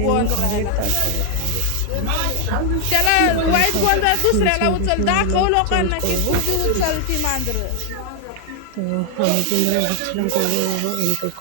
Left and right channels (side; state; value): both; different; correlation 0.00